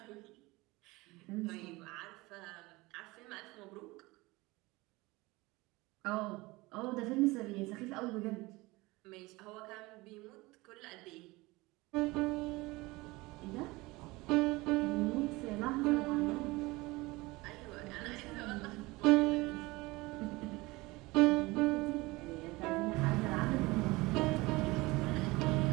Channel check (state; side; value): quieter; left; 22.0 dB